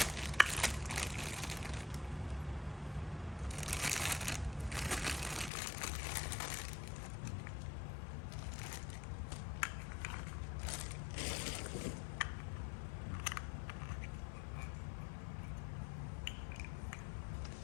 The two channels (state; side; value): drops out; right; at 5.5 s